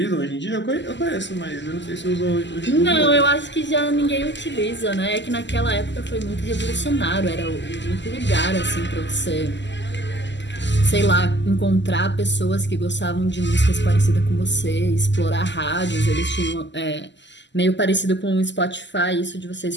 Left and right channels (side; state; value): right; late; 0.52 ms